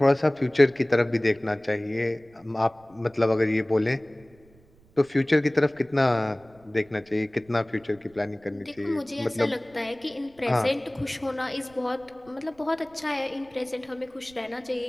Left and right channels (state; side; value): noise; right; rumble, 29 dB below the sound